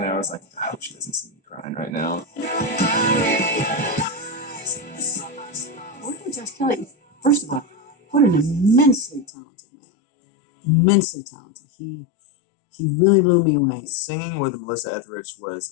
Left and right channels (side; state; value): right; drops out; at 9.3 s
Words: at her. I was like, "I hope she doesn't see me crying right now." Working with Josh Kelly, first of all, what an immensely talented man. Immensely talented. He really blew me away. Singing with Melissa Etheridge